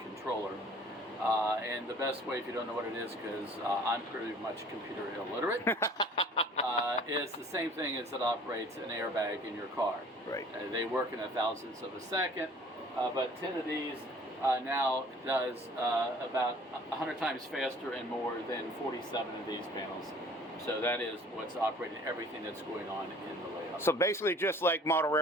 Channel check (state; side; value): normal; both; correlation 0.51